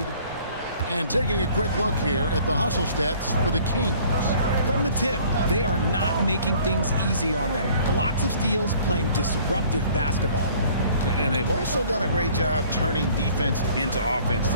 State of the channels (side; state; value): both; inverted; correlation -0.54